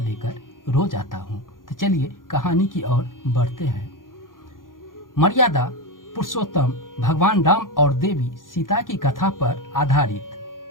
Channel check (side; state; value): right; late; 0.90 ms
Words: लेकर रोज आता हूं। तो चलिए कहानी की ओर बढ़ते हैं। मर्यादा पुरुषोत्तम भगवान राम और देवी सीता की कथा पर